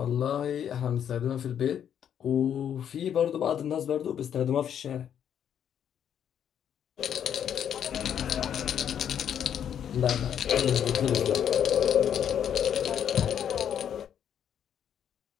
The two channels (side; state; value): right; quieter; 9.1 dB